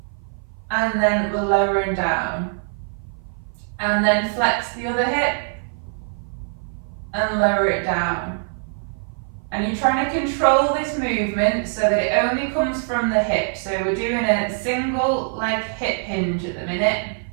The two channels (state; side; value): silent; left; 56 dB below the other